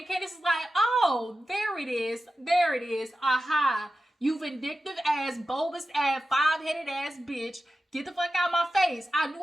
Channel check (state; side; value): normal; both; correlation 0.93